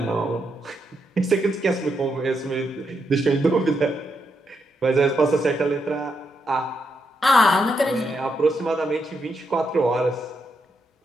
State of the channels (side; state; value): both; normal; correlation 0.81